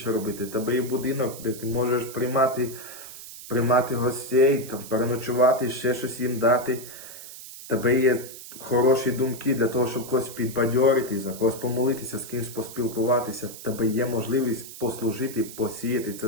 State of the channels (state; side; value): noise; right; hiss, 14 dB below the sound